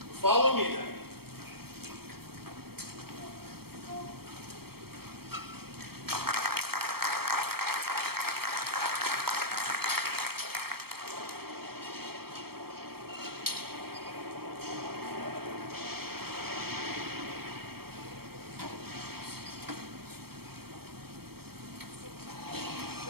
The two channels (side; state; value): left; late; 0.95 ms